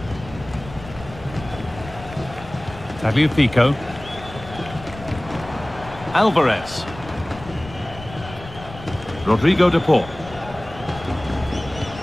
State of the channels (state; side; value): noise; left; rumble, 15 dB below the sound